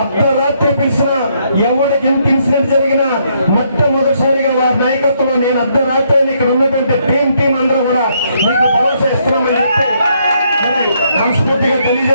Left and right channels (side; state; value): both; inverted; correlation -0.73